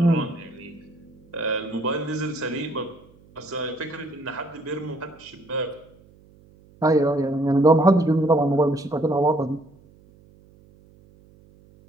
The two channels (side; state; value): right; noise; hum, 27 dB below the sound